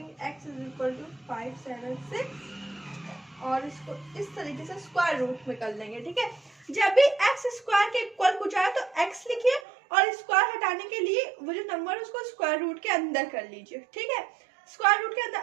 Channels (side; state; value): left; drops out; at 9.7 s